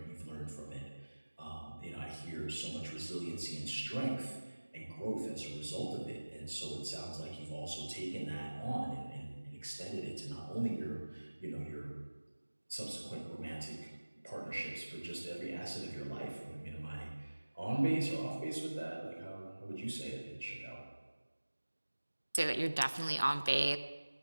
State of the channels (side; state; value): both; inverted; correlation -1.00